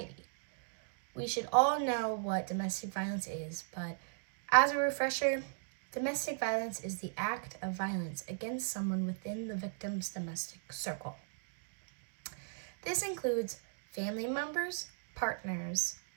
We should all know what domestic violence is, but as a refresher, domestic violence is the act of violence against someone within the victim's domestic circle. This includes family members, partners,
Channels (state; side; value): silent; left; digital silence